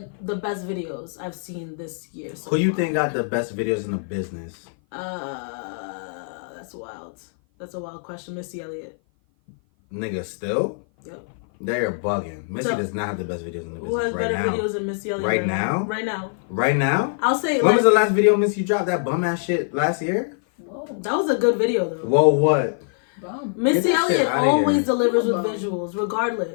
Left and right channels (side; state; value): right; silent; 56 dB below the other